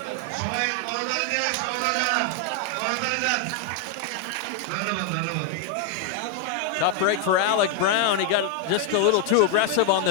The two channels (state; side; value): different; both; correlation 0.00